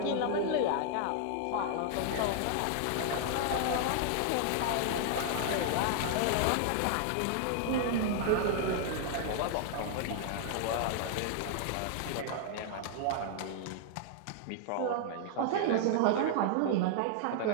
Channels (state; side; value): different; both; correlation 0.00